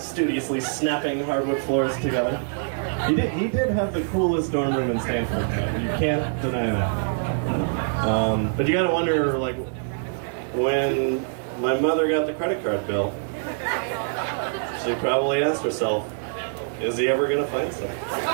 snapping hardwood floors together. He did have the coolest dorm room in Stanford. You can't deny that. But you gotta wonder, like, when my mother got the credit card bill, she probably asked herself, is he ever gonna find something?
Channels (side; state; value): left; silent; 62 dB below the other